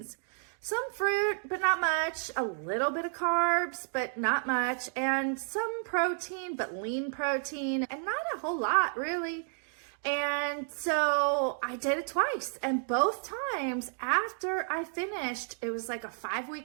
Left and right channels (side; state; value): left; silent; 57 dB below the other